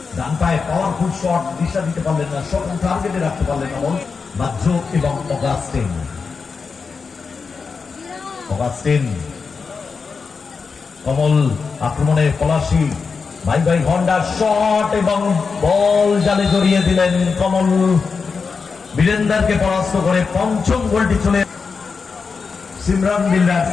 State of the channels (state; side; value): quieter; right; 5.1 dB